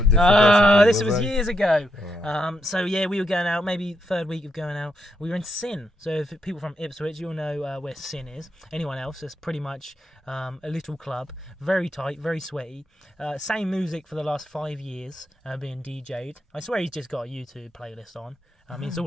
person. This was years ago. So yeah, we were going out, maybe 3rd week of going out. We were in Sin. So if people from Ipswich, you'll know where Sin is. Anyone else, it's pretty much a little club, very tight, very sweaty. Same music for the last 5 years, being DJ'd. I swear he's just got a YouTube playlist on. I mean, it's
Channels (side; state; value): both; normal; correlation 0.80